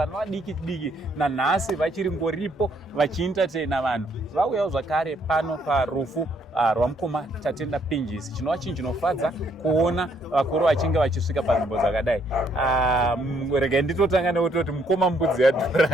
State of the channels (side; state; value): both; normal; correlation 0.69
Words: vadiki diki, nanhasi vachiri ngoripo vachientertaina vanhu. Vauyawo zvakare pano parufu rwamukoma Tatenda Pinjisi. Chinova chinhu chinofadza kuona vakuru vachinge vachisvika panzvimbo dzakadai. Regai nditotanga nekutoti mukoma mbudzi